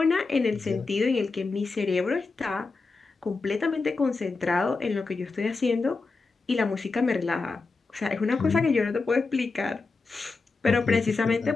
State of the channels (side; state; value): right; quieter; 4.0 dB